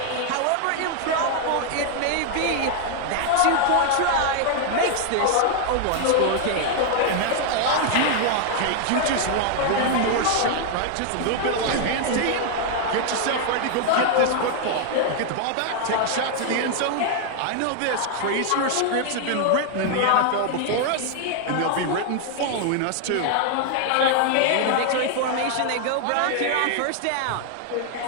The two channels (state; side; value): different; both; correlation 0.00